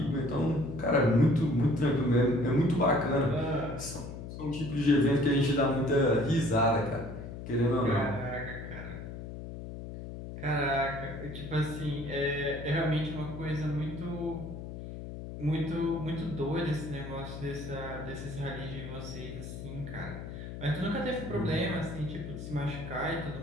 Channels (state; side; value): noise; left; hum, 9 dB below the sound